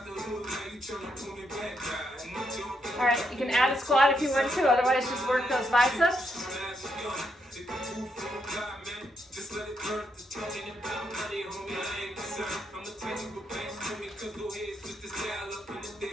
All right, you can add a squat if you want to, otherwise just work those biceps.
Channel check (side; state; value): both; normal; correlation 0.79